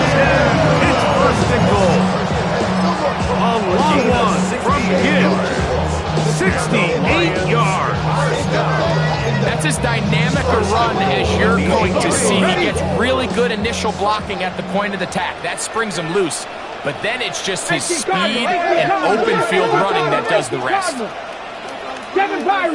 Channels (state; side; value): identical; both; correlation 1.00